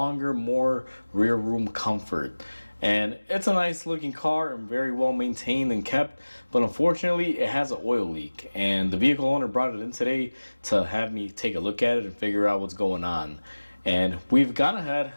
more rear room comfort. And it's a nice looking car and very well maintained and kept, but unfortunately it has an oil leak. And the vehicle owner brought it in today to have me take a look at it and figure out what's going on. And we've gone ahead,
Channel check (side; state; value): both; inverted; correlation -1.00